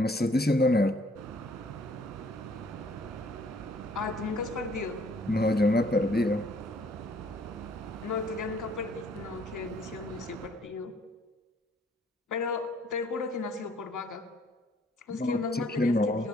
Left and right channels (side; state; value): both; normal; correlation 0.62